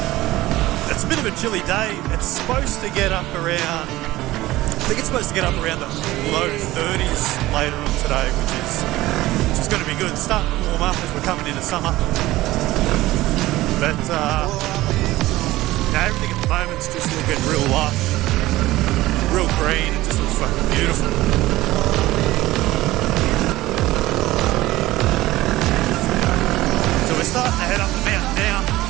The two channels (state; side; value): quieter; left; 17.2 dB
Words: bit of a chilly day. It's supposed to get up around, I think it's supposed to get up around the low 30s later on today, which is going to be good. It's starting to warm up as we're coming into summer. But everything at the moment's just looking real lush, real green. It just looks fucking beautiful. So we're starting to head up the mountain now.